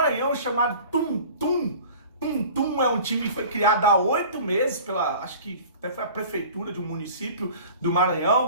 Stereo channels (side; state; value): both; inverted; correlation -0.43